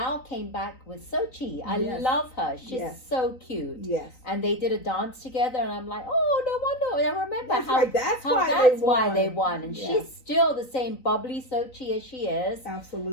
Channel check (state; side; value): late; right; 3.9 ms